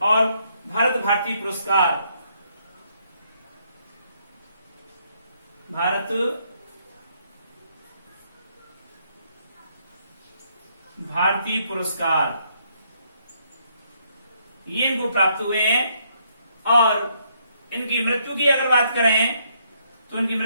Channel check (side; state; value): both; inverted; correlation -0.72